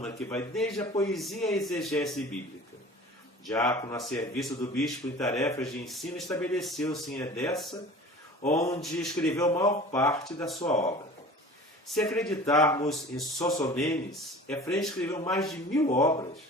que vai desde a poesia à exegese bíblica. Diácono a serviço do bispo em tarefas de ensino, estabeleceu-se em Edessa, onde escreveu a maior parte da sua obra. Se acreditarmos em Sossomenes, Efrem escreveu mais de 1000 obras,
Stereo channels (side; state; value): both; normal; correlation 0.42